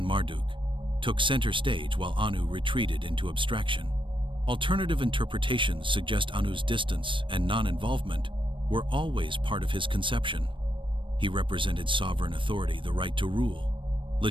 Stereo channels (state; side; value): late; left; 0.25 ms